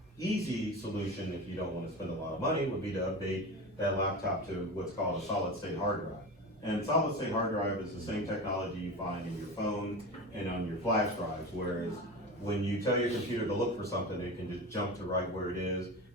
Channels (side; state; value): both; normal; correlation 0.27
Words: easy solution, if you don't want to spend a lot of money, would be to update that laptop to what's called a solid state hard drive. And solid state hard drive is the same technology you find in your phone and on your flash drives, whereas when you tell your computer to look for something, it can just jump to right where it is